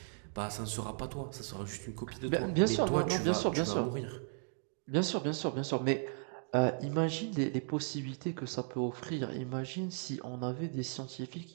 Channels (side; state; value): left; silent; 54 dB below the other